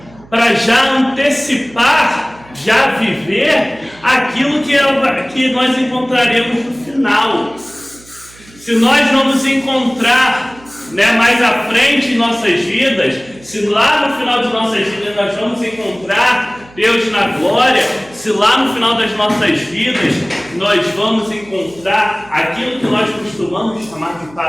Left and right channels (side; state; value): right; noise; hum, 24 dB below the sound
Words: para já antecipar, já viver aquilo que nós encontraremos no final. Se nós não nos encontrar mais à frente em nossas vidas, se lá no final de nossas vidas nós vamos encontrar Deus na glória, se lá no final das nossas vidas nós vamos encontrar aquilo que nós costumamos chamar de